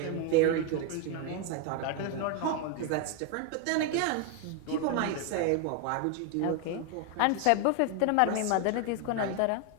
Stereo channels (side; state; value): both; different; correlation 0.01